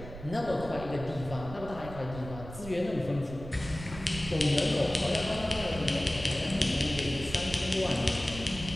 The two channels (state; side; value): noise; right; rumble, 12 dB below the sound